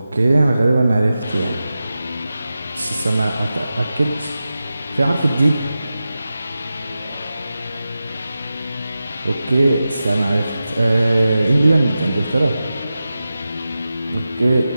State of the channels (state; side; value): inverted; both; correlation -0.93